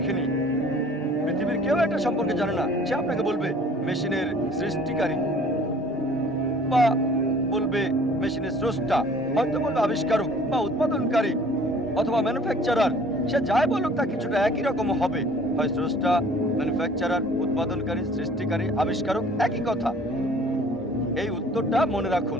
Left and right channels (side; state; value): both; normal; correlation 0.52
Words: কেউ এটা সম্পর্কে জানে না, সে আপনাকে বলবে মেশিনের সৃষ্টিকারী, বা বলবে মেশিনের স্রষ্টা, হয়তো বলবে আবিষ্কারক বা উৎপাদনকারী অথবা ম্যানুফ্যাকচারার। সে যাই বলুক তা কিছুটা একই রকম হবে, হয় স্রষ্টা, ম্যানুফ্যাকচারার, উৎপাদনকারী, সৃষ্টিকারী, আবিষ্কারক, একই কথা। এই উত্তরটা মনে রাখুন।